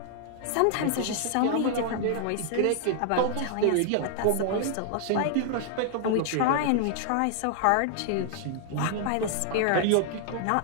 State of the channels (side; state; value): both; different; correlation 0.00